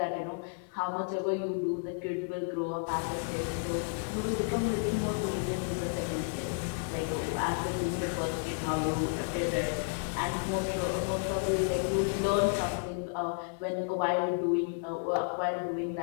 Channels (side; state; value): right; silent; digital silence